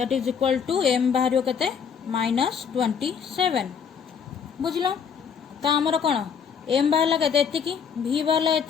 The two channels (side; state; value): right; quieter; 6.9 dB